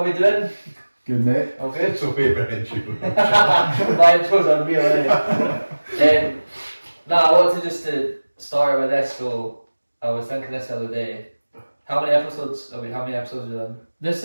we doing? Good, mate. All good? So favourite intro. My intro's unreal, eh? I wanted just to start with this, so I was thinking this the other day. How many episodes have we done? This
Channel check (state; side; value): inverted; both; correlation -1.00